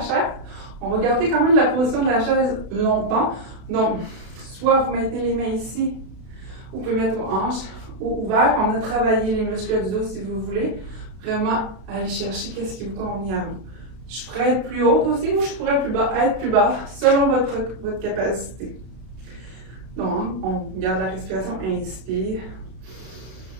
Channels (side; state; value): left; late; 32 ms